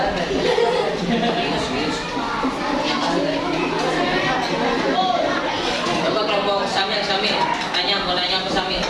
Coba kelompok Samil, mau nanya ke Samil.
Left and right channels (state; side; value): identical; both; correlation 1.00